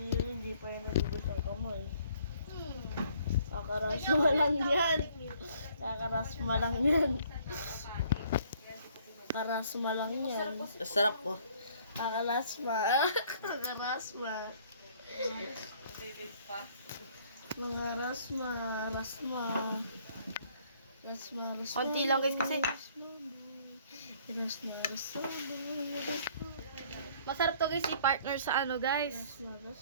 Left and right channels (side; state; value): both; inverted; correlation -0.60